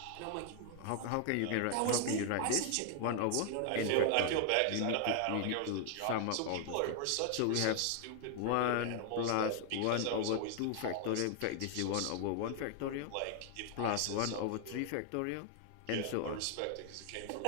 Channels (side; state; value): both; different; correlation 0.00